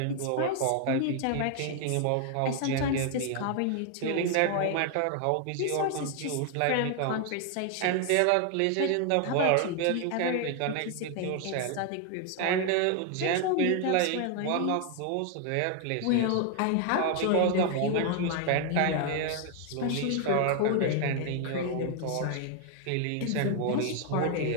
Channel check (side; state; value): both; different; correlation 0.00